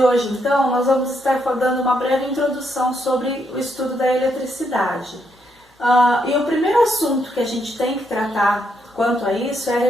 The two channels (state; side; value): normal; both; correlation 0.77